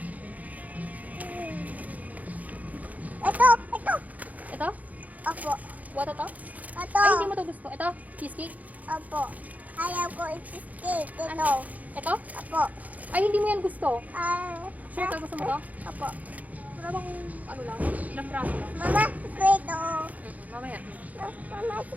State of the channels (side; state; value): left; late; 0.076 ms